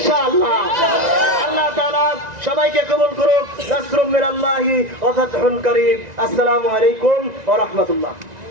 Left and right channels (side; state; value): left; late; 1.9 ms